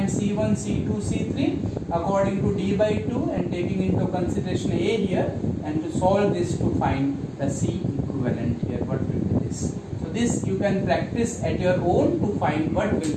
C1, C2, C3 according to D by 2 and taking into consideration A here, and to solve this to find the C equivalent here. What will be this? So this you can practice at your own to find what will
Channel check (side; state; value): both; identical; correlation 1.00